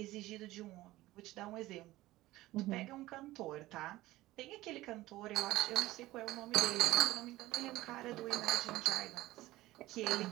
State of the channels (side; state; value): left; quieter; 17.3 dB